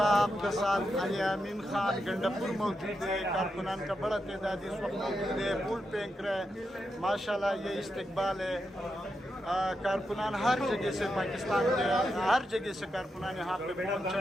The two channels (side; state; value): both; normal; correlation 0.86